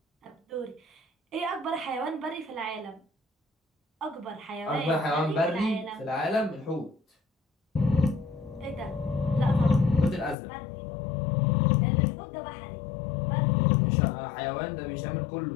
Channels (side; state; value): right; drops out; at 10.4 s